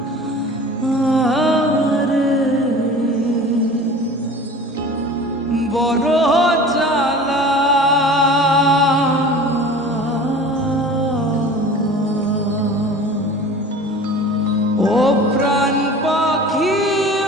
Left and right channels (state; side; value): normal; both; correlation 0.41